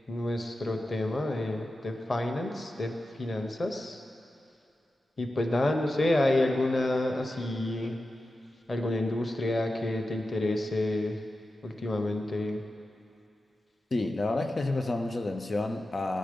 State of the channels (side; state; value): both; normal; correlation 0.92